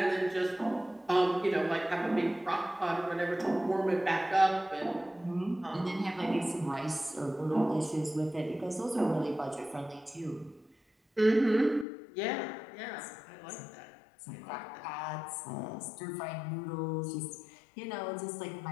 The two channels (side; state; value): right; drops out; at 11.9 s